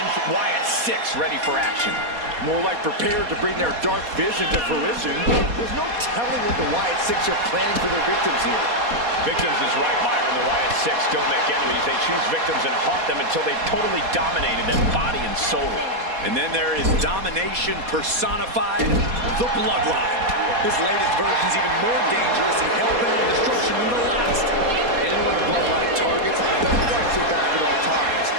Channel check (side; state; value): left; late; 4.2 ms